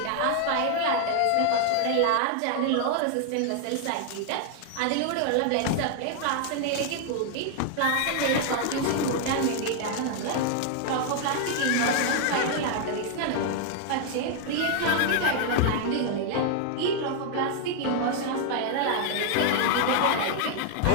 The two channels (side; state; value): both; different; correlation 0.00